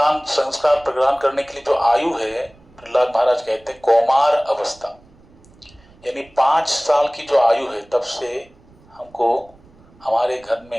संस्कार प्रदान करने के लिए जो आयु है, प्रहलाद महाराज कहते हैं कौमार अवस्था, यानी 5 साल की जो आयु है तब से हमको हमारे घर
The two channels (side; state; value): right; noise; rumble, 28 dB below the sound